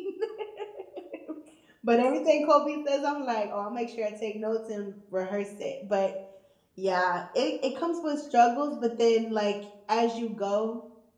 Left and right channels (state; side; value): identical; both; correlation 1.00